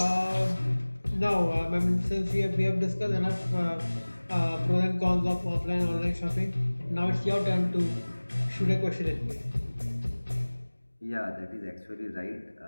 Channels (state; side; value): inverted; both; correlation -1.00